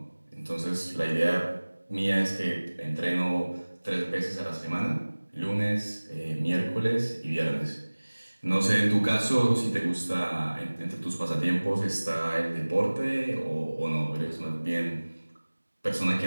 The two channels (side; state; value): both; inverted; correlation -1.00